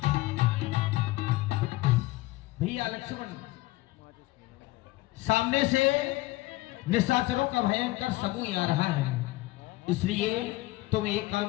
भैया लक्ष्मण सामने से निशाचरों का भयंकर समूह आ रहा है, इसलिए तुम एक काम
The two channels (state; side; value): quieter; right; 19.1 dB